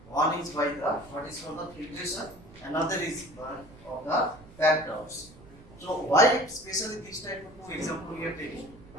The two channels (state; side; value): noise; right; rumble, 21 dB below the sound